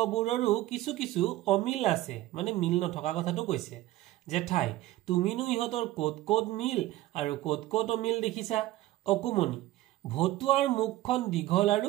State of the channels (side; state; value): left; quieter; 16.0 dB